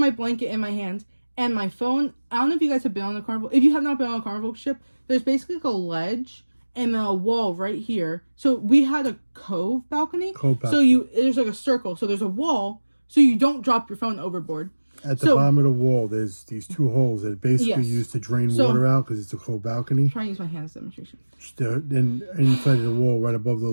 blanket in my hand and my phone. I don't know if you guys have been on the Carnival. If you have not been on a Carnival ship, there's basically like a ledge and a wall right here. So we had a cove balcony. So there's like a circle. So there's a wall so you don't drop your phone overboard. At the bottom of the wall, there's these 2 holes that are basically used to drain water out because it's a cove balcony. I'm trying to use my hand as a demonstration. Then inside of the wall, right above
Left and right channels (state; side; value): inverted; both; correlation -1.00